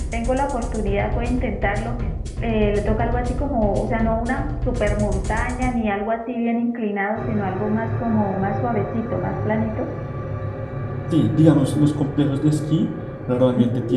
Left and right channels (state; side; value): identical; both; correlation 1.00